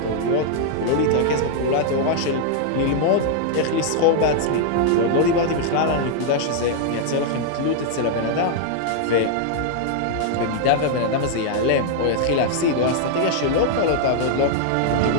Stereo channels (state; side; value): different; both; correlation 0.00